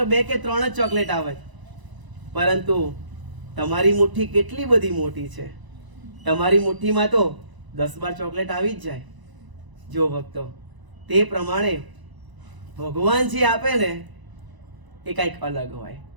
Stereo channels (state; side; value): late; left; 1.0 ms